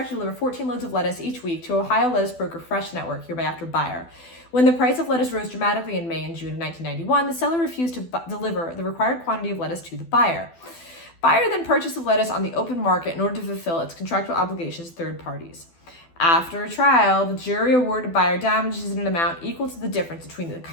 to deliver 14 loads of lettuce each week to Ohio lettuce broker Fresh Network, hereby after buyer. When the price of lettuce rose dramatically in May and June of 1991, the seller refused to deliver the required quantity of lettuce to the buyer. Buyer then purchased the lettuce on the open market in order to fulfill its contractual obligations to third parties. After a trial, the jury awarded buyer damages in an amount equal to the difference between the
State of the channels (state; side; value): late; right; 12 ms